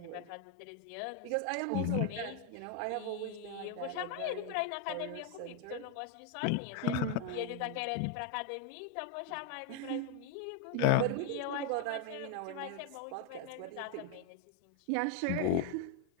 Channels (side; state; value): both; different; correlation 0.01